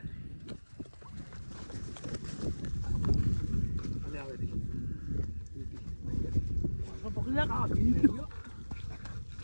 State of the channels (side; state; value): both; inverted; correlation -1.00